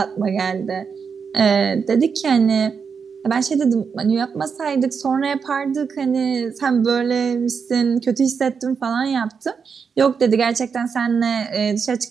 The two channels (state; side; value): quieter; left; 6.0 dB